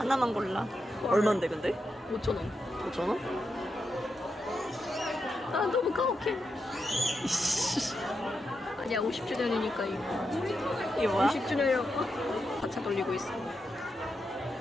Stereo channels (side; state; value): both; normal; correlation 0.86